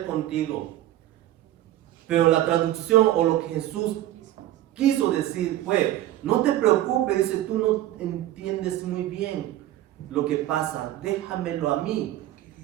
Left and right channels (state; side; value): quieter; left; 13.8 dB